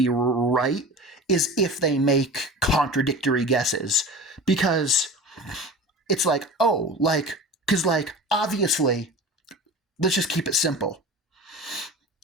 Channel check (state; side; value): normal; both; correlation 0.35